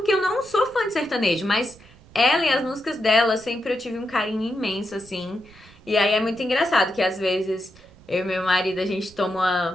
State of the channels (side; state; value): right; noise; rumble, 25 dB below the sound